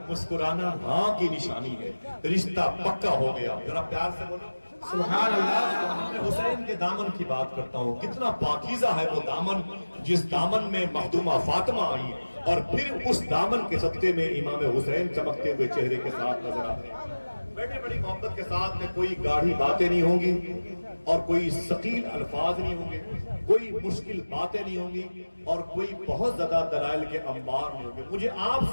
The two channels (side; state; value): both; inverted; correlation -1.00